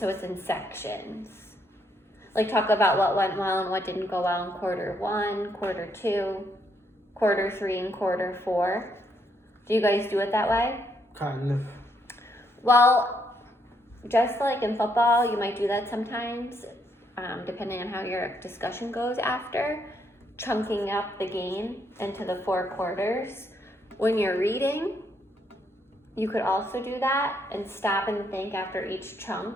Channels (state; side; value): normal; both; correlation 0.74